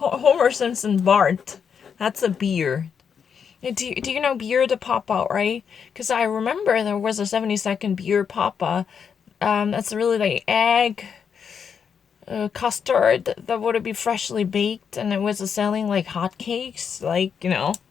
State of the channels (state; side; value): quieter; right; 6.9 dB